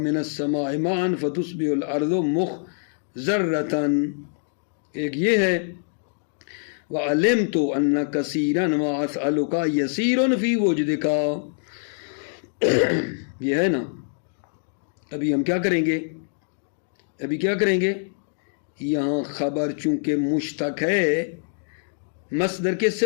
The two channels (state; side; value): silent; right; digital silence